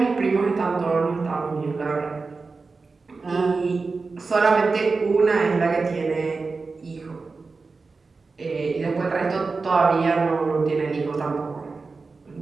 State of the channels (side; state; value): left; quieter; 4.2 dB